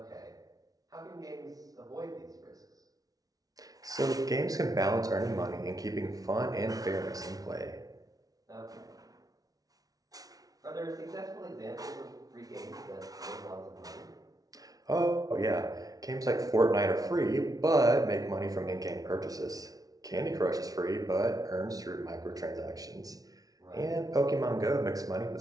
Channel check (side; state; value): left; late; 0.18 ms